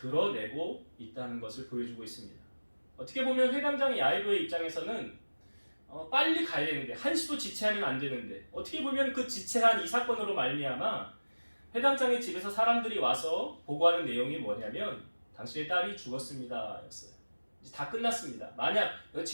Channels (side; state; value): both; inverted; correlation -1.00